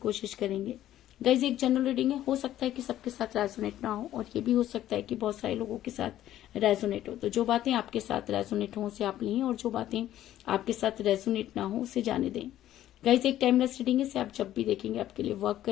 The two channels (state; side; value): quieter; right; 12.8 dB